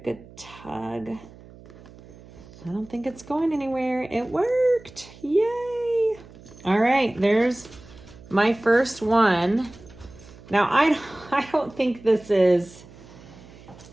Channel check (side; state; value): right; noise; hum, 21 dB below the sound